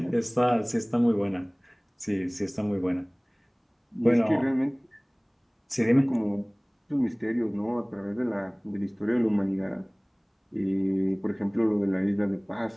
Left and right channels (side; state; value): both; identical; correlation 1.00